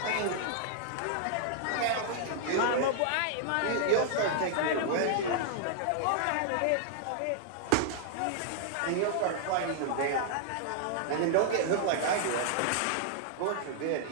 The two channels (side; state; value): both; different; correlation -0.01